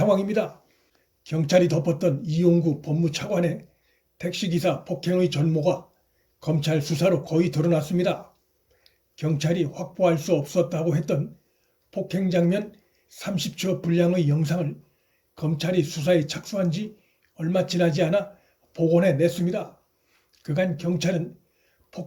경찰이 덮었던 이용구 법무차관의 택시기사 폭행의 전모가 검찰 수사로 거의 드러났습니다. 경찰이 확보할 수 없었다고 했던 폭행 장면 30초 분량의 영상을 검찰이 수사에 착수한 지 얼마 지나지 않아 복원해 냈습니다. 그간 경찰은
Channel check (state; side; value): identical; both; correlation 1.00